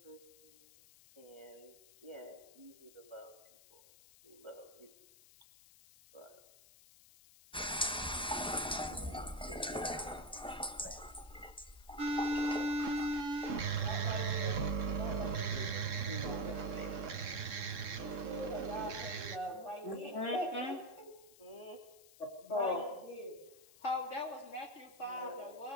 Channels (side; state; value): left; noise; hiss, 22 dB below the sound